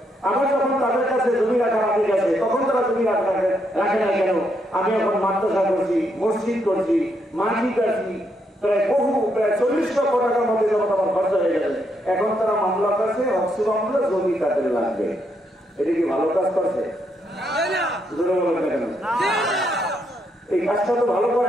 আমার যখন তাদের কাছে জমি রাখার আগে গেছে তখন তারা জমি রাখে নাই কেন? আমি এখন মাদ্রাসা করছি, মসজিদ করছি, মাটি কাটছি, প্রায় 40 লক্ষ টাকার মধ্যে যখন আমার খরচা হয়ে গেছে, এখন তারা মামলা করছে, অক্সি মামলা, জমি তাদের লাগবে। এটা কি ভালো কাজ করছে? এই কাজটা তো ভালো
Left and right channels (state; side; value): normal; both; correlation 0.77